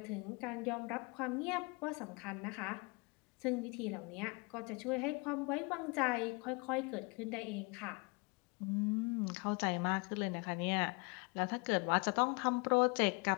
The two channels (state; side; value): quieter; right; 29.9 dB